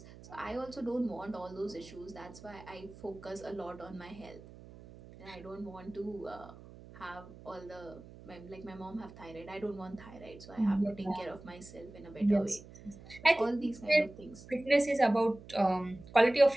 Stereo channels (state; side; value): noise; right; hum, 18 dB below the sound